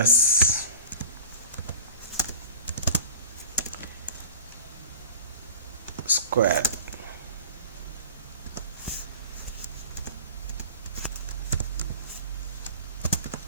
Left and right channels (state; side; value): inverted; both; correlation -0.38